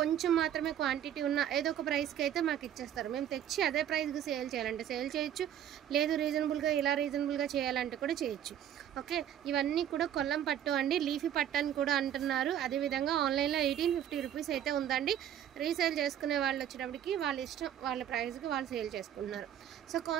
మాత్రమే క్వాంటిటీ ఉన్న ఏదో ఒక ప్రైస్కి అయితే మాకు ఇచ్చేస్తారు. మేము తెచ్చి అదే ప్రైస్కి సేల్ చేయాలంటే సేల్ చేయొచ్చు, లేదు రీజనబుల్గా చేయాలంటే కూడా చేయొచ్చు. ఓకే, ఇవన్నీ కూడా కొల్లం పట్టు అండి. లీఫీ పట్టు అని కూడా అంటున్నారు. అదేవిధంగా ఆన్లైన్లో 1850 రూపీస్ అయితే ఉందండి. రీసేల్ చేసుకునే వాళ్ళు వచ్చేటప్పటికి వాళ్ళ ఇష్టం, వాళ్ళ ప్రైస్కి వాళ్ళు సేల్ చేసుకుంటున్నారు. సో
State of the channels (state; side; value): quieter; left; 10.3 dB